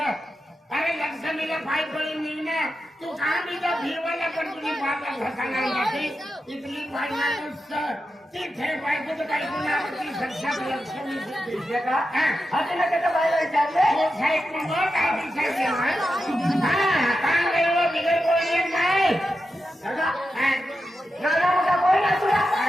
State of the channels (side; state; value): both; normal; correlation 0.89